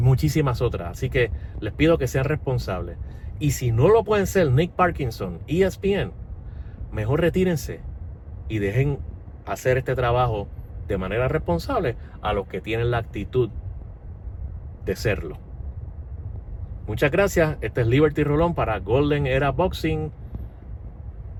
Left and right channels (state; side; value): identical; both; correlation 1.00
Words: otras, así que les pido que sean responsables. Y si no lo pueden ser Nick Parkinson, ESPN, mejor retírense y dejen hacer este trabajo de manera responsable a los que tienen la actitud de serlo. Muchas gracias. Este es Liberty Rolón para Golden Era Boxing.